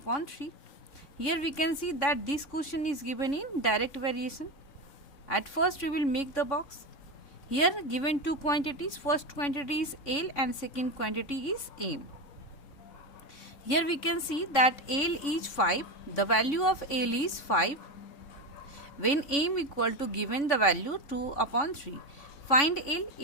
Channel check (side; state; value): right; late; 3.6 ms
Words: 3. Here we can see that this question is given in direct variation. At first we will make the box. Here given two quantities, first quantity is L and second quantity is M. Here we can see that L is 5, the value of L is 5 when M equal to given the value 2 upon 3. Find L,